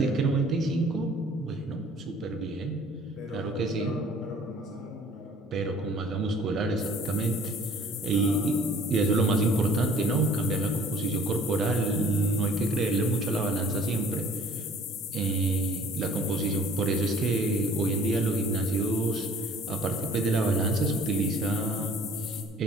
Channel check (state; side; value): normal; both; correlation 0.53